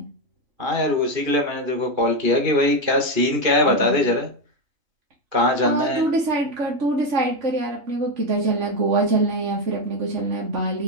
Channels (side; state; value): left; late; 2.5 ms